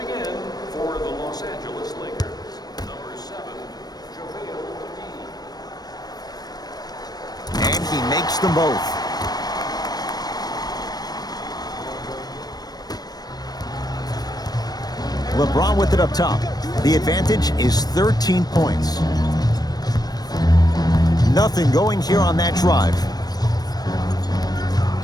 in for the Los Angeles Lakers. Number 7, JaVale McGee. And he makes them both. LeBron with it up top. The advantage is 13 points. Nothing going here on that drive.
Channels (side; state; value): right; late; 0.19 ms